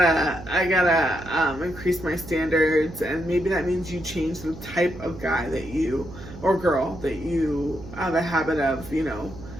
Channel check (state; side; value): noise; right; hum, 14 dB below the sound